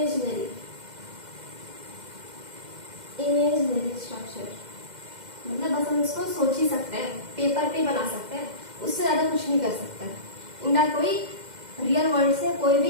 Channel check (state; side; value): late; left; 2.1 ms